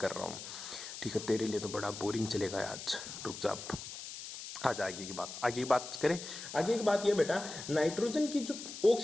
रहा हूँ। ठीक है, तेरे लिए तो बड़ा बोरिंग चलेगा आज, रुक जा। आज आगे की बात करें। आगे की बात यह बेटा, नाइट्रोजन की जो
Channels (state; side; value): noise; left; hiss, 10 dB below the sound